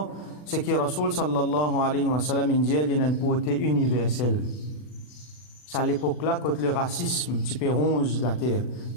c'est que Rasul sallallahu alayhi wa sallam, il y a une beauté universelle. C'est à l'époque-là, quand le racisme, tu peux ronge la terre,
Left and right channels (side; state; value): right; late; 40 ms